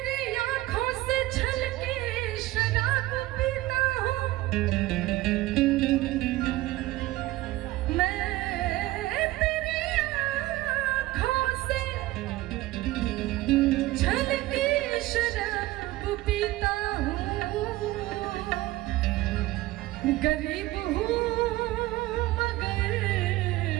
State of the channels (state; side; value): quieter; left; 17.5 dB